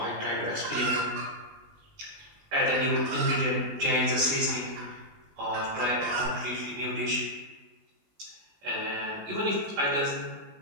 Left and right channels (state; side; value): late; left; 20 ms